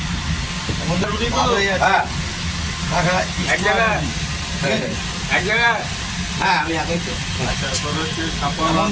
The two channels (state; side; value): identical; both; correlation 1.00